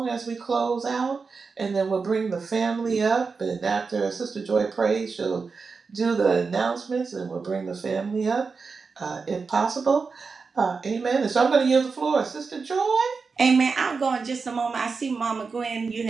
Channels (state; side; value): quieter; left; 4.8 dB